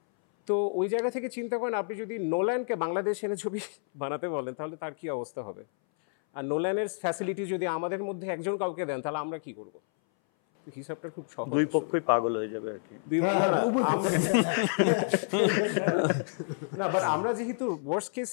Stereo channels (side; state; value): right; silent; 58 dB below the other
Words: তো ওই জায়গা থেকে চিন্তা করেন, আপনি যদি নোল্যানকে বাংলাদেশ এনে ছবি বানাতে বলেন তাহলে তার কি অবস্থা হবে? আর নোল্যানের ফ্যাসিলিটি যদি আমাদের মধ্যে একজন কাউকে দেন তাহলে আমরা কি করব? হিসাবটা খুব সহজ। দুই পক্ষই পাগল হয়ে যাবে আর কি। না, বাট আমরা যেহেতু ওয়ার্স্ট কেস